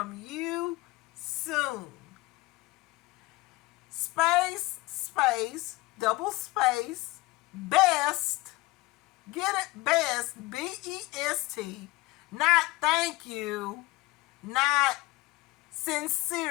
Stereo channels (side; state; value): right; quieter; 21.3 dB